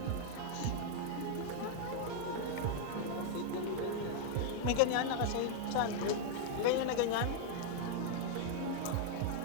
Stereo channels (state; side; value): different; both; correlation 0.00